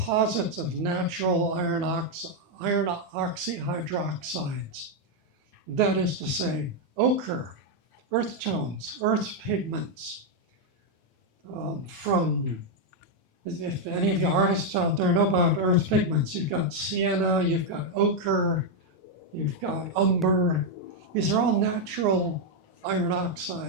of natural iron oxyhydroxides. That is to say, ochre, earth tones, earth pigments. If any of you artists out there know about earth pigments, you've got sienna, you've got ochre, you've got umber. These are all natural iron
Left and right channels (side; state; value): both; normal; correlation 0.01